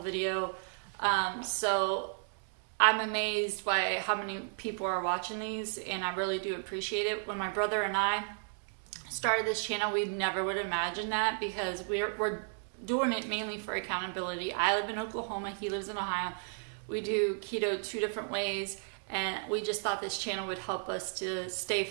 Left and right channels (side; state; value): left; silent; 55 dB below the other